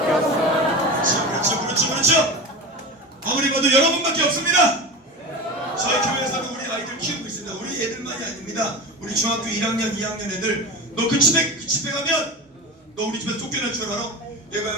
없어. 그렇죠. 아무리 봐도 여러분밖에 없습니다. 저희 교회에서는 우리 아이들 키우고 있습니다. 우리 애들만이 아닙니다. 우리 중학교 1학년, 2학년 애들 너 그 집에 가면 너 우리 집에서 쫓겨날 줄 알아?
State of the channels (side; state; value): both; normal; correlation 0.27